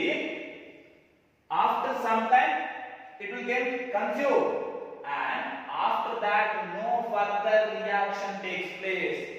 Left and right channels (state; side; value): identical; both; correlation 1.00